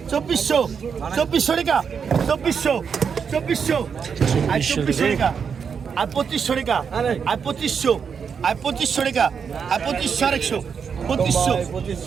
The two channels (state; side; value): quieter; left; 6.5 dB